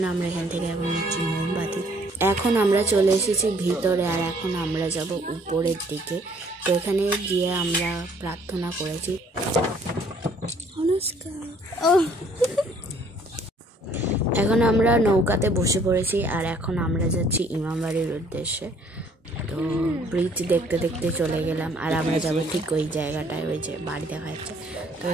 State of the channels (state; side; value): normal; both; correlation 0.61